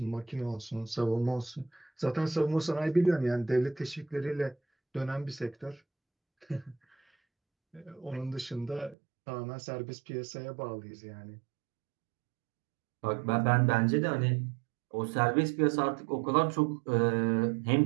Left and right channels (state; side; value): drops out; left; at 9.0 s